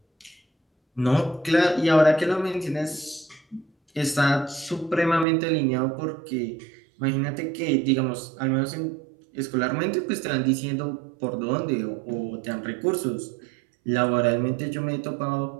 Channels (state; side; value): drops out; left; at 5.2 s